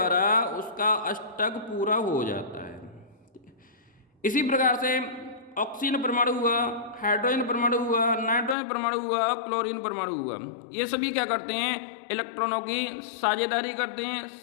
उसका अष्टक पूरा हो जाता है। इसी प्रकार से ऑक्सीजन परमाणु हुआ, हाइड्रोजन परमाणु हुआ, नाइट्रोजन परमाणु हुआ, क्लोरीन परमाणु हुआ, ये सभी क्या करते हैं, इलेक्ट्रॉनों की साझेदारी करते हैं,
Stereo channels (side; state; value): right; drops out; at 8.6 s